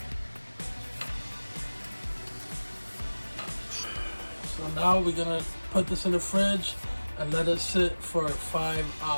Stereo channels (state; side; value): inverted; both; correlation -1.00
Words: So now we're gonna put this in the fridge and let it sit for 5